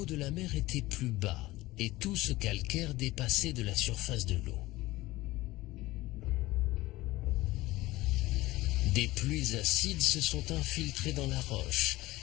de la mer était plus bas et tout ce calcaire dépassait de la surface de l'eau. Des pluies acides se sont infiltrées dans la roche,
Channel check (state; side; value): quieter; right; 18.7 dB